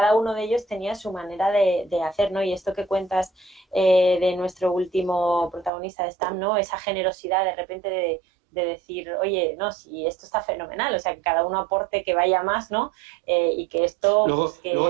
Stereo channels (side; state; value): left; drops out; at 5.7 s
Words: uno de ellos tenía su manera de hacer, ¿no? Y esto que cuentas de nuestro último protagonista de Stam, ¿no? Esa generosidad de repente de decir, oye, no, si esto está fenomenal, o sea, que cada uno aporte que vaya más, ¿no? Y que esto... Luego